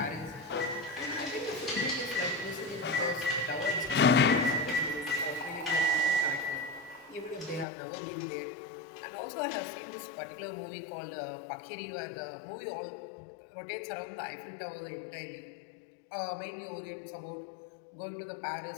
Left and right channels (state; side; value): drops out; right; at 7.7 s